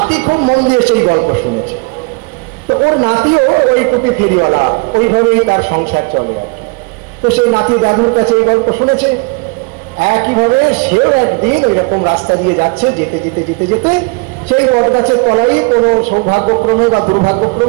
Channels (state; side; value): quieter; left; 30.6 dB